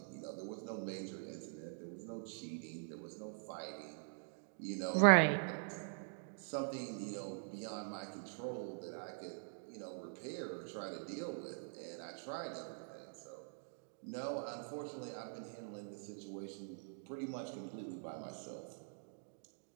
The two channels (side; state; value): left; silent; digital silence